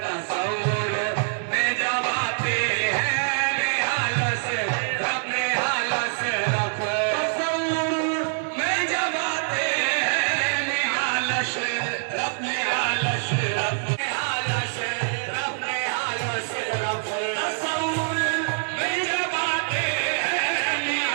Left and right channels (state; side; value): silent; left; 62 dB below the other